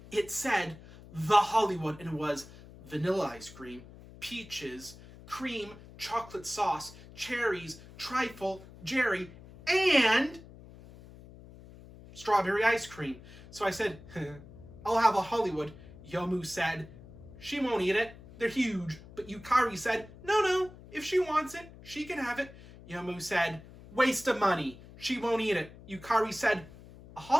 It said The Hollywood, and it was vanilla ice cream, peaches, cream, chocolate sauce, cherries, trifle, jerry, and strawberry ice cream. So I said, I'll have a Hollywood. Yomu said, she won't eat it. They're huge. But Yukari said, no, if she wants it, she can have it. Yomu said, waste of money. She won't eat it. Yukari said, a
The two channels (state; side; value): noise; left; hum, 19 dB below the sound